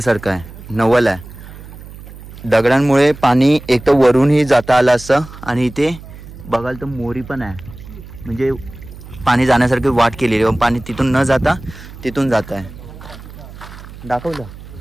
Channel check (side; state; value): right; noise; hum, 16 dB below the sound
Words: आहे, नवल आहे. दगडांमुळे पाणी एक तर वरूनही जाता आलं असतं आणि इथे बघाल तर मोरी पण आहे, म्हणजे पाणी जाण्यासारखी वाट केलेली आहे. पाणी तिथून न जाता तिथून जात आहे. दाखवलं